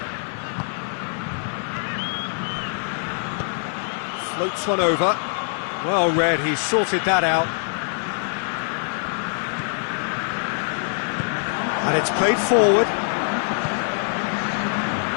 Floats one over. Well read, he sorted that out. And it's played forward.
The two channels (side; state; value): right; silent; digital silence